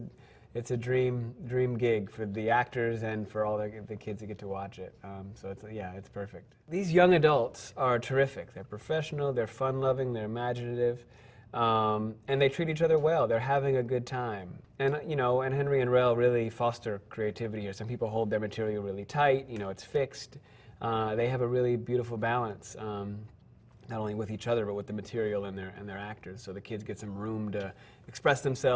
a dream gig for the actors and for all the kids that get to watch it. So it's perfect. These young adults are terrific. They're professional, they're fun-loving, they're imaginative, and they treat each other well. They're having a good time. And, you know, and Henry and Rel really foster creativity here. Some people hold their material really tight, you know, it's fixed. They have a really beautiful balance, not only with each other, but with the material and their actors. So the kids get some room to express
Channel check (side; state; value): both; identical; correlation 1.00